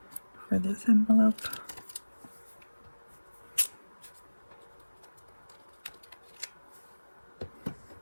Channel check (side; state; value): both; inverted; correlation -1.00